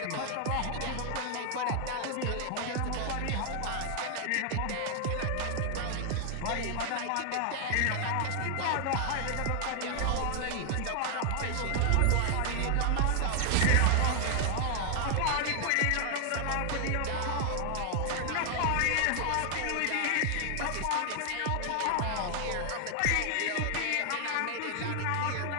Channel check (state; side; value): different; both; correlation 0.00